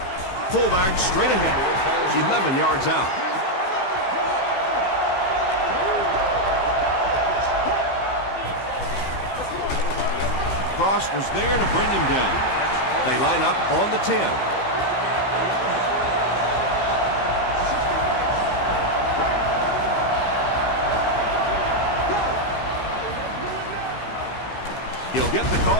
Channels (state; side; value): late; right; 16 ms